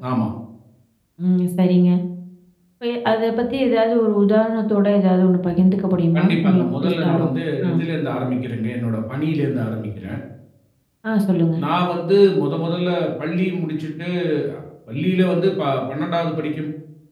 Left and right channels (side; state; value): both; identical; correlation 1.00